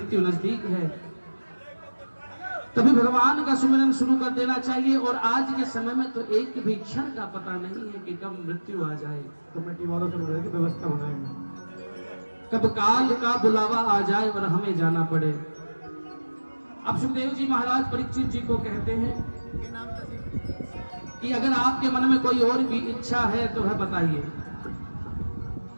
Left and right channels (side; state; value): both; inverted; correlation -1.00